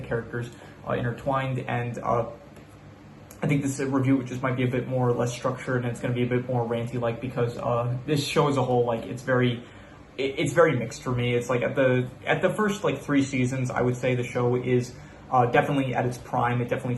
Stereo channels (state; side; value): identical; both; correlation 1.00